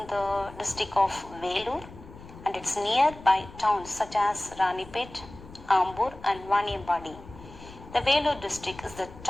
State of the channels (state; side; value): noise; left; rumble, 18 dB below the sound